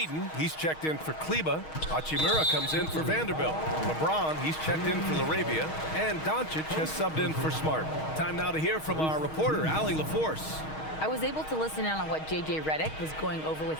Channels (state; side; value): late; right; 6.4 ms